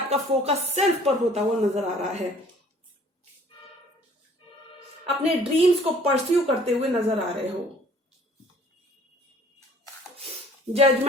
फोकस सेल्फ पर होता हुआ नजर आ रहा है, अपने ड्रीम्स को परस्यू करते हुए नजर आ रहे हो।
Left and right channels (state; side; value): normal; both; correlation 0.54